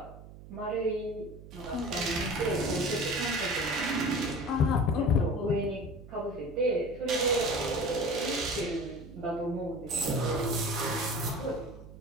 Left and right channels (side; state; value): right; noise; hum, 16 dB below the sound